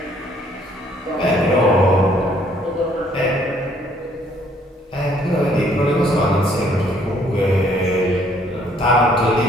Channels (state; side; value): normal; both; correlation 0.64